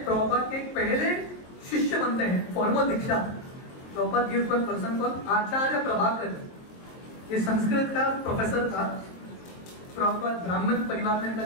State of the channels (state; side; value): late; right; 22 ms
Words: प्रभुपाद के पहले शिष्य बनते हैं, formal diksha. Prabhupada gives one person called acharya Prabhakar, ये संस्कृत का प्रोफेसर था। प्रभुपाद ब्राह्मण परिवार में इनका